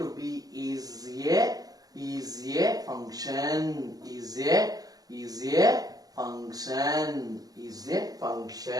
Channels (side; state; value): left; late; 0.18 ms